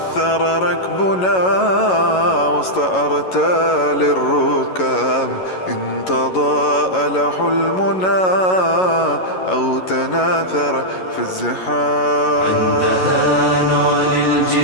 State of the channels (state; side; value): late; right; 11 ms